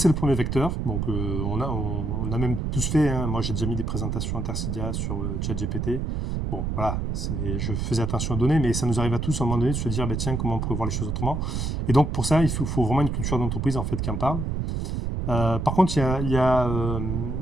le premier vecteur. Donc on a même tous fait, moi j'ai déjà mis des présentations Intercidia sur ChatGPT. Bon, voilà, je faisais attention aux données, mais ça nous arrive à tous à un moment donné de se dire, tiens, comment on pourrait voir les choses autrement. Et donc pour ça, il faut vraiment une culture d'entreprise en fait qui en parle. Par contre, il y a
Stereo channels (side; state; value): right; noise; rumble, 2 dB below the sound